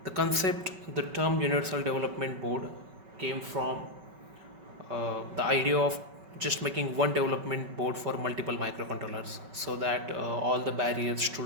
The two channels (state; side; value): late; left; 5.3 ms